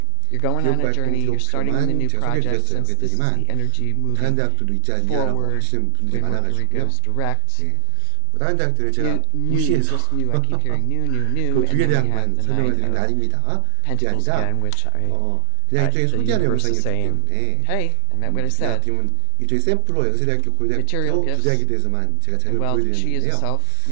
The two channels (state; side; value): different; both; correlation 0.00